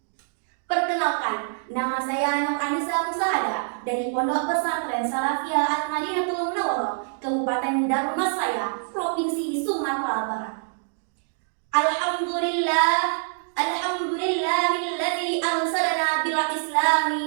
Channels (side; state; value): left; silent; digital silence